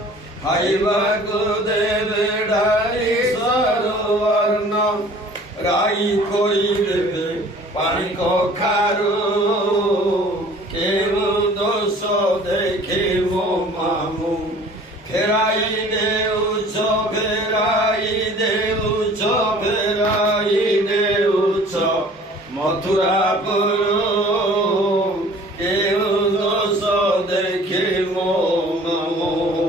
খাইবাকু দেবে ডালি সরু অর্ণ রাই করি দেবে পানি কখারু কেমন দেখে মামু ফেরাই দেউছ মথুরাপুর কেমন দেখে মামু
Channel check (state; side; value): normal; both; correlation 0.49